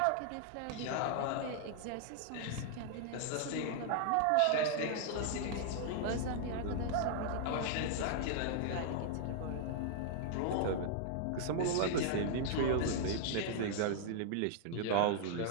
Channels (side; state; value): both; different; correlation -0.01